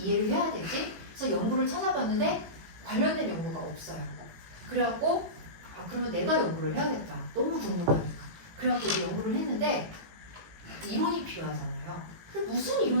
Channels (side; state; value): left; late; 18 ms